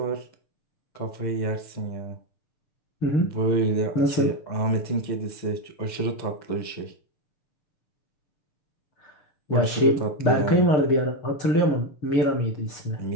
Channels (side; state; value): right; late; 6.7 ms